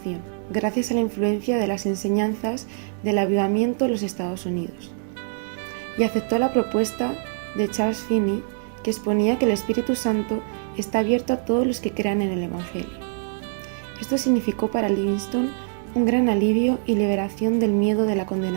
gracias a la influencia de las enseñanzas del avivamiento en los Estados Unidos. Y aceptó la propuesta de Charles Finney, que exponía que el Espíritu Santo está abierto a todos los que crean en el Evangelio. Esto significó para Livingstone un gran alivio y liberación del miedo de la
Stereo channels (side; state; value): left; silent; digital silence